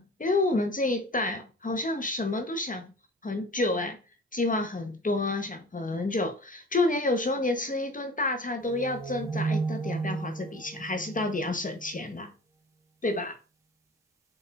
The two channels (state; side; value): normal; both; correlation 0.42